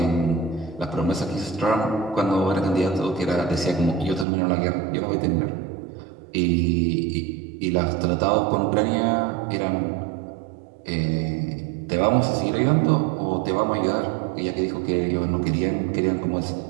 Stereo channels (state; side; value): drops out; left; at 4.2 s